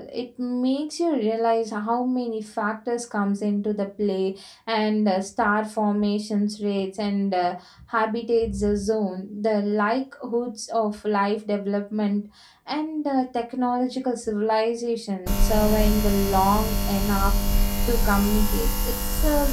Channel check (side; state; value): both; identical; correlation 1.00